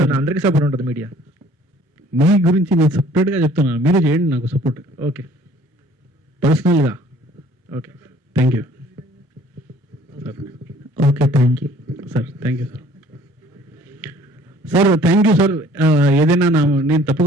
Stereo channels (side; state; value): both; normal; correlation 0.55